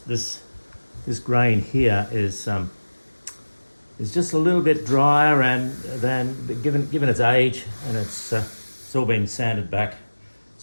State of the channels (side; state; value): both; inverted; correlation -1.00